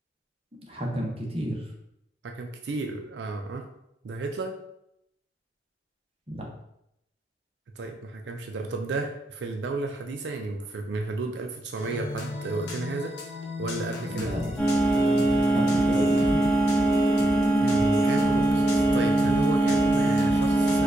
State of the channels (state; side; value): normal; both; correlation 0.82